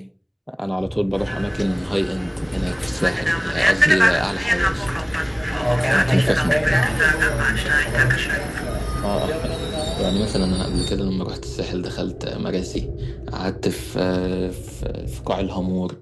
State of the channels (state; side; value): identical; both; correlation 1.00